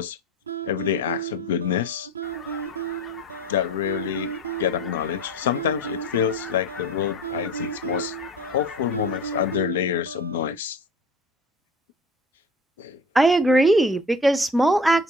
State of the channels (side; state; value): both; normal; correlation 0.37